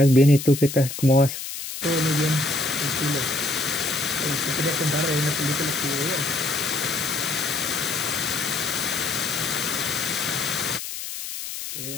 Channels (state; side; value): noise; left; hiss, 8 dB below the sound